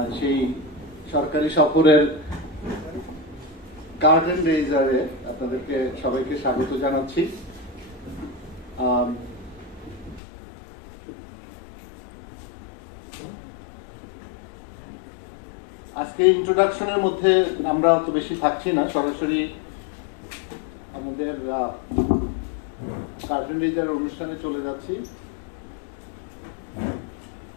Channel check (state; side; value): drops out; right; at 10.2 s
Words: সেই সরকারি সফরের গার্ডেন রেজারে আপনাদেরকে সবাইকে স্বাগত জানাচ্ছি। আজকে ইন্ট্রোডাকশনের মধ্যে আমরা অত বেশি থাকছি না, সরাসরি আমাদের গার্ডেন রেজার অনুষ্ঠানে চলে যাচ্ছি।